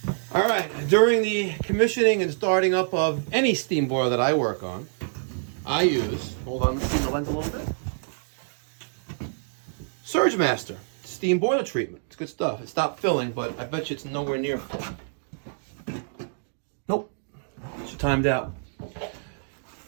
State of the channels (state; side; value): silent; left; digital silence